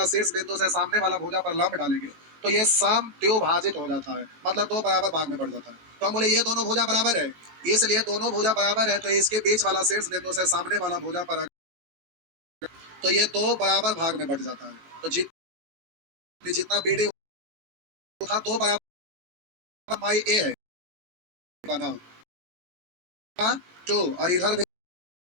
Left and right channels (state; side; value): late; left; 18 ms